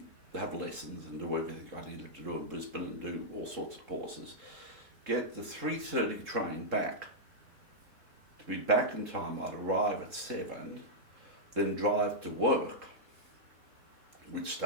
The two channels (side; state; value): left; late; 3.8 ms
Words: have lessons and do everything I needed to do in Brisbane and do all sorts of courses, get the 3:30 train back. To be back in time, I'd arrive at 7, then drive to work, which